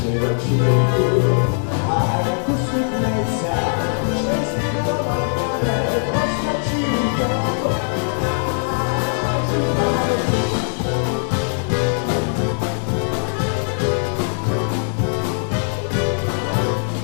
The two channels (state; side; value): silent; right; 65 dB below the other